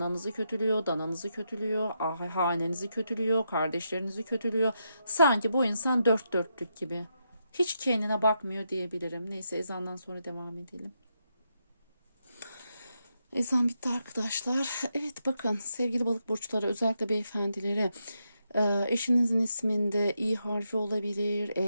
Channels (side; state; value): both; inverted; correlation -0.83